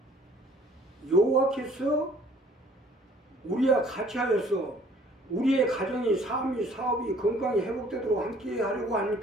여호와께서 우리와 같이 하여서 우리의 가정이 삶이 사업이 건강이 회복되도록 함께 하려고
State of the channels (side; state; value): both; normal; correlation 0.57